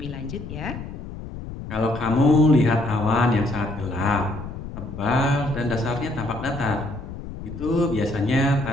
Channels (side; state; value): left; noise; rumble, 10 dB below the sound